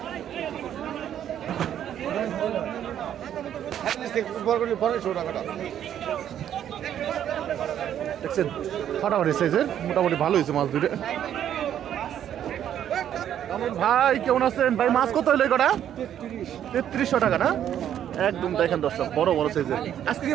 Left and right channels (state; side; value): quieter; left; 10.2 dB